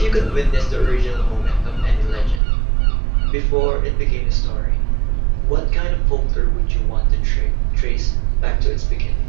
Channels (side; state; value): left; drops out; at 2.4 s